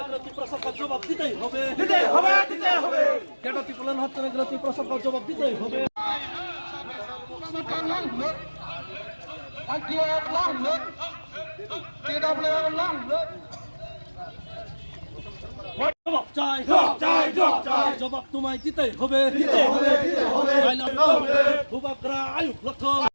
ত্রিপুরা সরকার জবাব দিতেই হবে যেটা ত্রিপুরা হচ্ছে না এগুলো ত্রিপুরা সরকার জবাব দিতেই হবে। জবাব তোমায় দিতেই হবে ভূভাগরা আয়ুক লক্ষণ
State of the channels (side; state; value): both; inverted; correlation -1.00